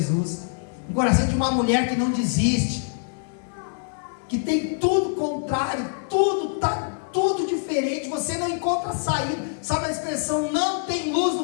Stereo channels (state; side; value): silent; right; digital silence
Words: um coração de uma mulher que não desiste, que tem tudo contrário, tudo está tudo diferente, você não encontra saída. Sabe a expressão, não tem luz